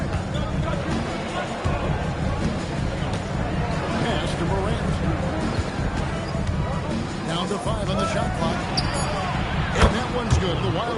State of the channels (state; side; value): identical; both; correlation 1.00